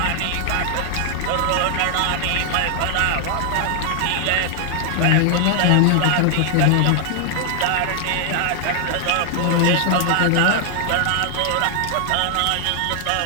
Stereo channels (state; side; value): different; both; correlation 0.00